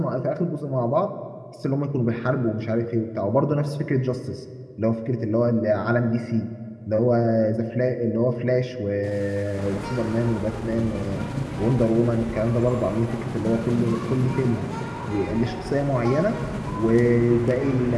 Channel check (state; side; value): identical; both; correlation 1.00